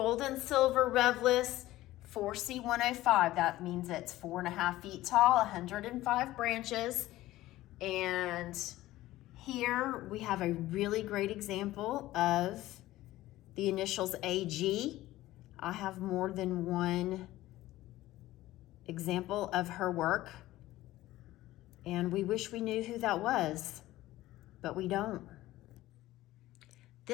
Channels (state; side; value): quieter; right; 16.2 dB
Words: and silver REVLIS 4C105. That means it's 4.5 feet tall, 105 branches. And here we have a really great example of the initials AG. I have more than one example of her work, and we wish we knew who that was, but we don't.